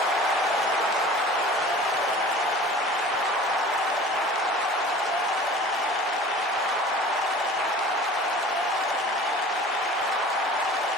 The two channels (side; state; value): both; normal; correlation 0.43